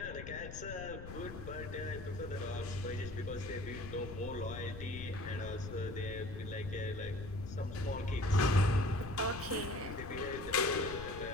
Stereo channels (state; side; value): noise; left; rumble, 10 dB below the sound